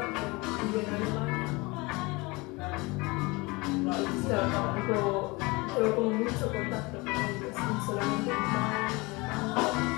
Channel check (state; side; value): quieter; right; 25.0 dB